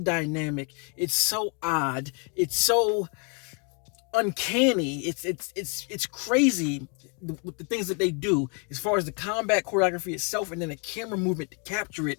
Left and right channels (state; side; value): quieter; right; 37.1 dB